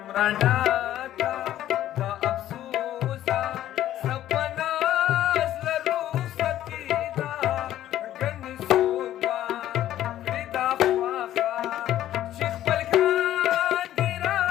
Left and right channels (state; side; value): quieter; right; 12.6 dB